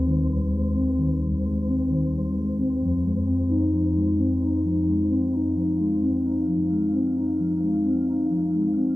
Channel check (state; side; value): late; left; 0.18 ms